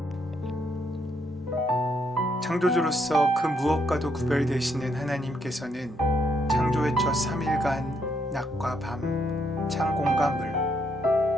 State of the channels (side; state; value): both; normal; correlation 0.75